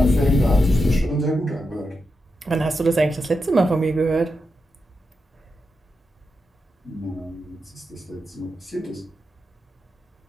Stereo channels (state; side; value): normal; both; correlation 0.87